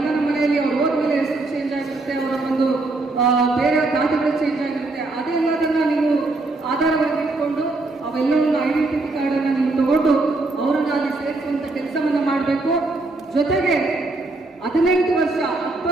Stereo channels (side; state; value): left; quieter; 3.2 dB